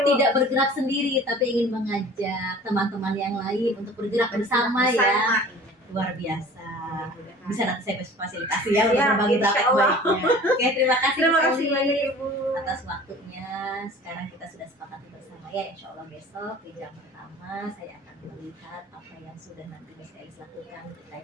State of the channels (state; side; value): normal; both; correlation 0.44